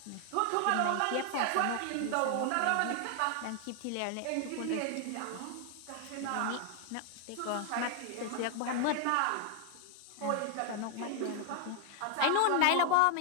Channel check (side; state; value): both; different; correlation 0.00